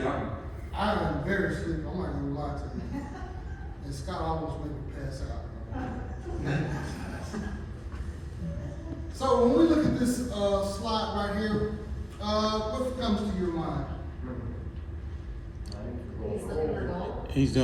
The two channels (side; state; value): both; identical; correlation 1.00